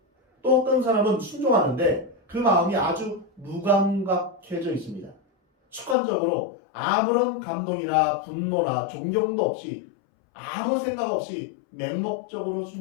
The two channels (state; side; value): drops out; right; at 6.0 s